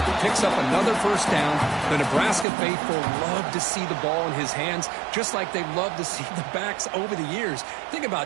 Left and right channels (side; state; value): left; drops out; at 2.5 s